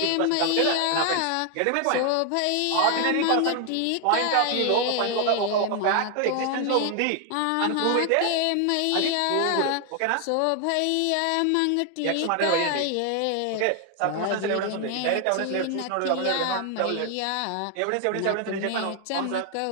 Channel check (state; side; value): different; both; correlation 0.00